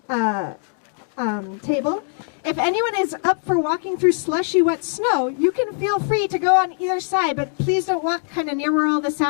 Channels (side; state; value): right; silent; 59 dB below the other